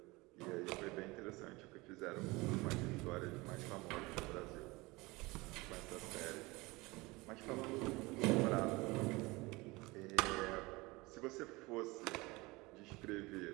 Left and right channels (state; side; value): quieter; left; 23.0 dB